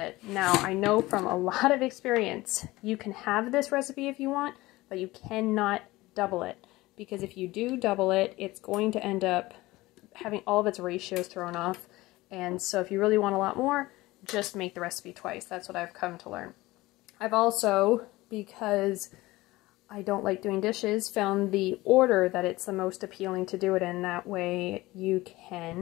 Now, I know from a lot of experience, you can have this recipe if you want, but you cannot double it, because if you do double it, it's going to end up having all of its ratios thrown off. And so if you really want a lot more, just make the recipe twice. That's what I've come to learn. I've also, because I don't like doing dishes, found the order that it's the most appealing to do it in. That way you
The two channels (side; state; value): right; quieter; 19.3 dB